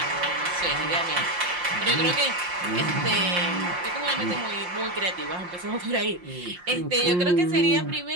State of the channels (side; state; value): left; late; 5.6 ms